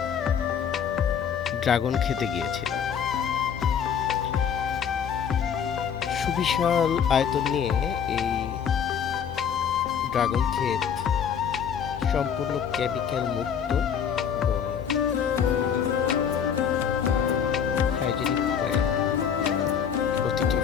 ড্রাগন খেতে গিয়েছিলাম। সুবিশাল আয়তন নিয়ে এই ড্রাগন ক্ষেত সম্পূর্ণ কেমিক্যাল মুক্ত এবং হাইজেনিক হয়ে প্রতিটি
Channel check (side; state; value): right; quieter; 7.8 dB